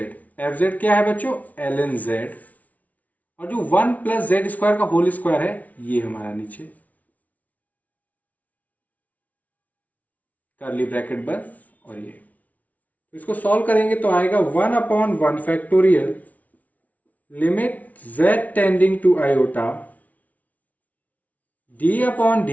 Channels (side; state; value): right; late; 0.072 ms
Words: जेड क्या है बच्चों, एल एन जेड, और जो 1+z² का होल स्क्वायर है ये हमारा नीचे कर्ली ब्रैकेट बंद, और ये तो इसको सॉल्व करेंगे तो आएगा 1/1 factorial limit z tending to iota d upon